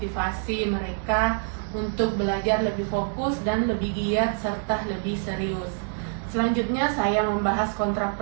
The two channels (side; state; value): left; silent; 60 dB below the other